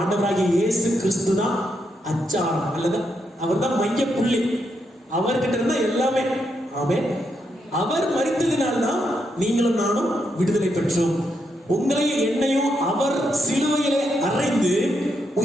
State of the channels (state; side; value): normal; both; correlation 0.81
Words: ஆண்டவராகிய இயேசு கிறிஸ்து தான் அச்சாரம், அல்லது அவர் தான் மைய புள்ளி, அவர்கிட்ட இருந்தா எல்லாமே. ஆமென். அவர் மரித்ததினால்தான் நீங்களும் நானும் விடுதலை பெற்றோம். உங்களையும் என்னையும் அவர் சிலுவையிலே அறைந்து